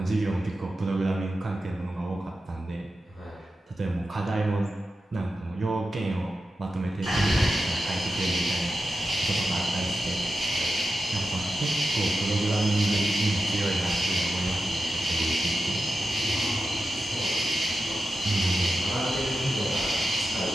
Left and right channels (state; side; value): normal; both; correlation 0.91